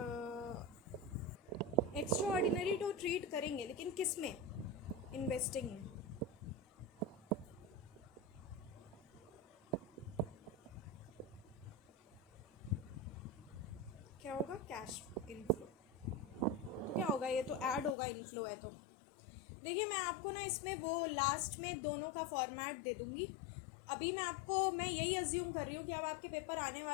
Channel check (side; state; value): right; drops out; at 17.9 s